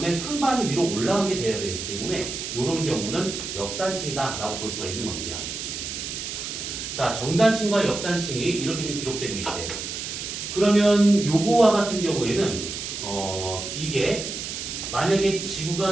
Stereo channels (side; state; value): right; noise; hiss, 6 dB below the sound